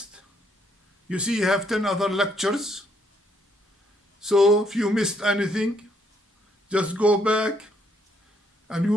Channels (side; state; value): both; normal; correlation 0.71